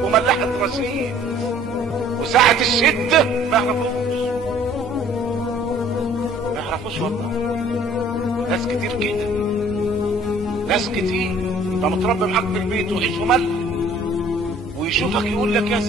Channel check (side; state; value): both; normal; correlation 0.55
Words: وملحة رصيد، وساعة الشدة ما يعرفوش والله. ناس كتير كده، ناس كتير. انت متربي معاك في البيت وعيش وملح، ويشوفك يقول لك يا